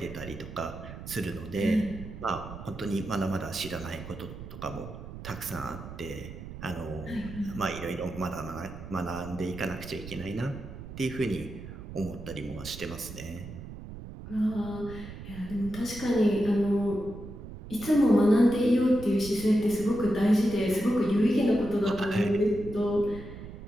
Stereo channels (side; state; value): right; noise; rumble, 12 dB below the sound